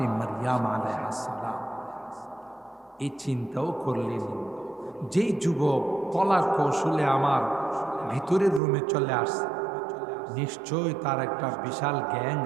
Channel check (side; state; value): left; drops out; at 8.6 s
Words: মারিয়াম আলাইহিস সালাম এই চিন্তাও করলেন, যেই যুবক কলা কৌশলে আমার ভিতরের রুমে চলে আসছে, নিশ্চয় তার একটা বিশাল গ্যাং